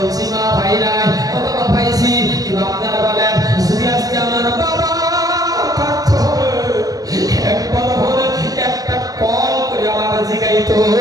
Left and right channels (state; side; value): late; left; 0.18 ms